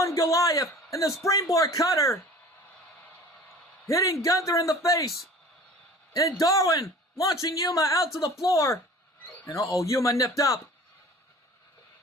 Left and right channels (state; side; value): normal; both; correlation 0.44